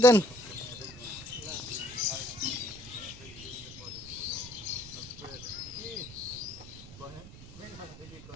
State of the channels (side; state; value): right; noise; rumble, 16 dB below the sound